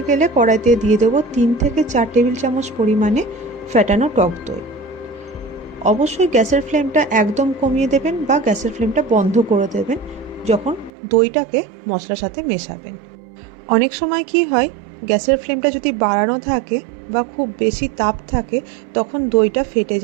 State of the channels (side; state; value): left; drops out; at 10.9 s